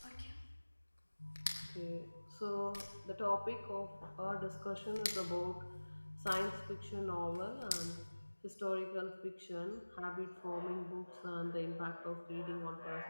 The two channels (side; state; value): both; inverted; correlation -1.00